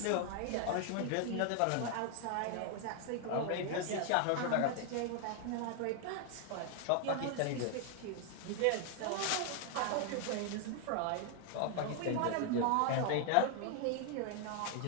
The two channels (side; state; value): both; different; correlation 0.00